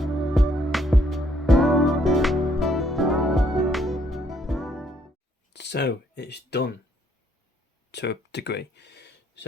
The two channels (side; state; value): both; normal; correlation 0.69